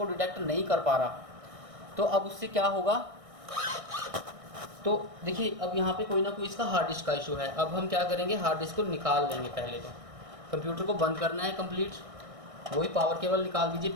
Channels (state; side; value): late; left; 1.6 ms